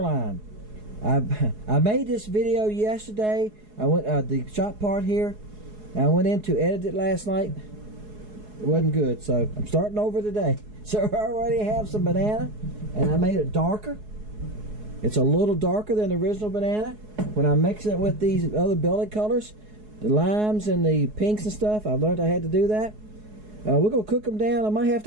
I made this video yesterday. I went the shot part here. I went in to edit it last night. It wasn't good, so I'm starting over today. So I already have some banana, and I made it darker. It's a little darker than the original banana. When I'm mixing it with these other belly colors, the limes and the pinks and stuff, I learned I had to do that. We're gonna cook them down. I might have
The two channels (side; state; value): left; late; 4.7 ms